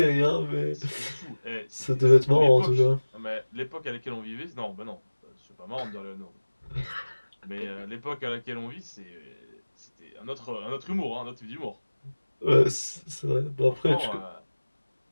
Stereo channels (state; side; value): inverted; both; correlation -1.00